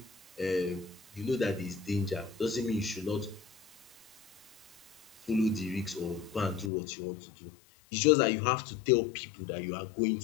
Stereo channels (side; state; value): right; drops out; at 6.7 s